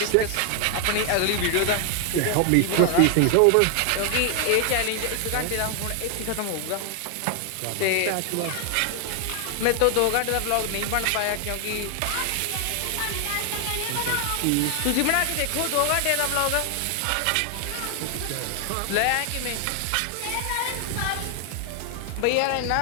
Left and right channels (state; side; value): different; both; correlation 0.00